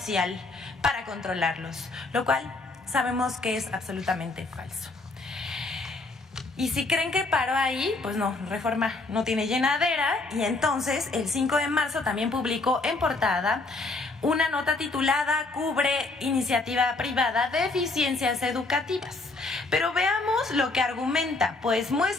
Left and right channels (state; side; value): quieter; right; 3.4 dB